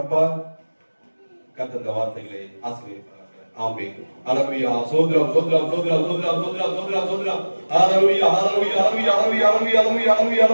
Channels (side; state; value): both; inverted; correlation -1.00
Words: கர்த்தர் இந்த வார்த்தைகளை ஆசீர்வதிப்பார். ஆமென். ஹல்லேலூயா. சோத்ரம் சோத்ரம் சோத்ரம் சோத்ரம் சோத்ரம் சோத்ரம் சோத்ரம். ஹல்லேலூயா ஹல்லேலூயா ஹல்லேலூயா ஹல்லேலூயா ஹல்லேலூயா